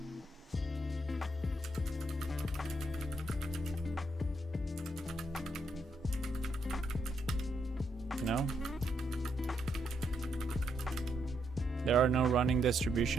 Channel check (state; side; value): normal; both; correlation 0.77